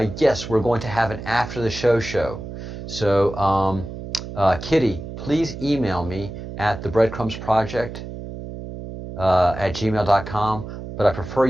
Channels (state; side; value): noise; right; hum, 10 dB below the sound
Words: yes, we're going to have an after the show. So Kitty, please email me at the Breadcrumbs Project at gmail.com. But I prefer